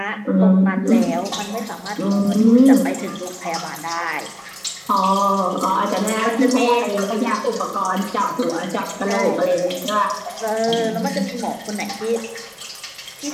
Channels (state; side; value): identical; both; correlation 1.00